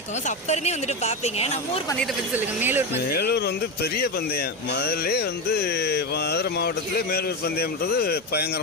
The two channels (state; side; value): normal; both; correlation 0.15